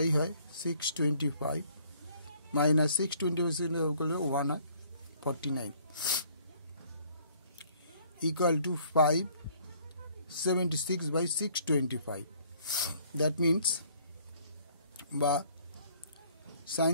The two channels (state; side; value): inverted; both; correlation -0.60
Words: হয় 625 minus 625 করলে 1 হয় 49 equal to 576/625. that means বা sin